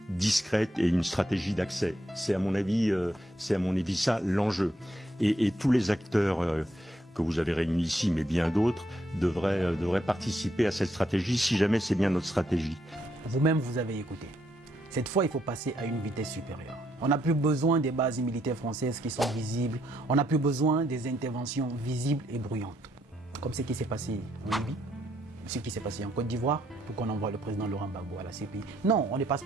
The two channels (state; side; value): normal; both; correlation 0.75